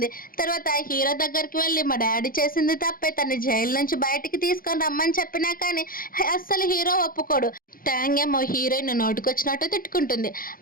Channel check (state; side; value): late; right; 0.42 ms